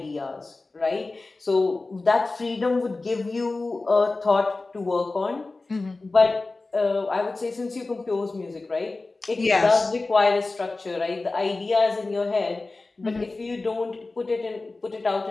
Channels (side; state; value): right; quieter; 3.4 dB